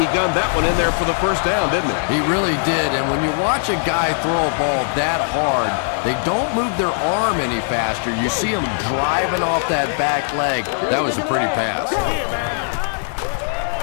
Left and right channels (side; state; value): right; silent; digital silence